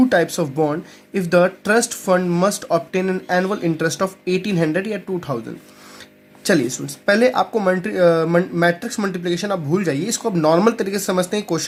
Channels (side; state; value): both; identical; correlation 1.00